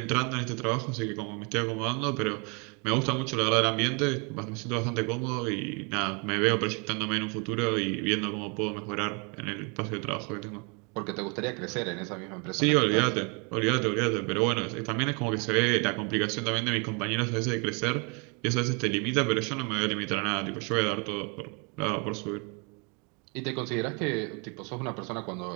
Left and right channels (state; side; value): quieter; left; 33.3 dB